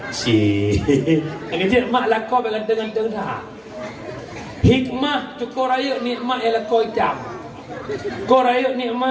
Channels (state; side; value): identical; both; correlation 1.00